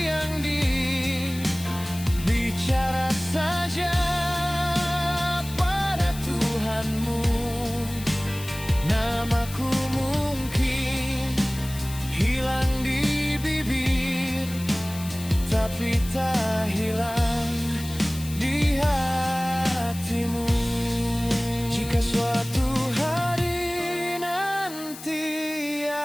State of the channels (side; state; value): left; noise; hiss, 14 dB below the sound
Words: bicara saja pada Tuhanmu. Namaku mungkin hilang di bibir, tapi tak hilang di hatimu. Jika suatu hari nanti